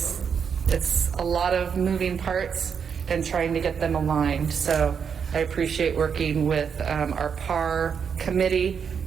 a lot of moving parts and trying to get them aligned. So I appreciate working with our PAR committee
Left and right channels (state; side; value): quieter; left; 6.9 dB